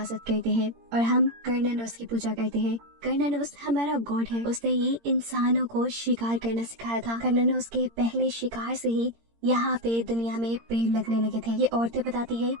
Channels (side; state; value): left; late; 17 ms